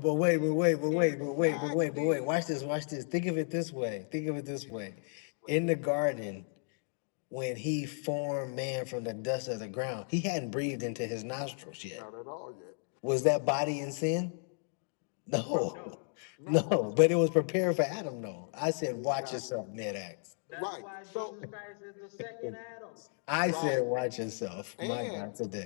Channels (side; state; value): right; silent; 55 dB below the other